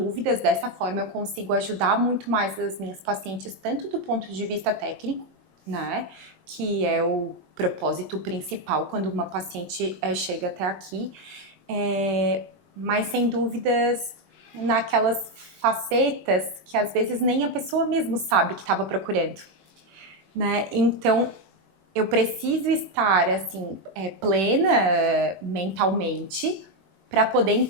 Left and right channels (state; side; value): late; left; 21 ms